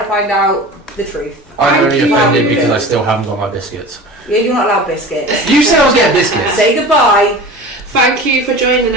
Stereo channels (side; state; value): both; normal; correlation 0.36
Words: to find out the truth. I'm only offended because I still haven't got my biscuits. Yeah, you're not allowed biscuits. You said I was getting biscuits. Say goodbye. Thank you for joining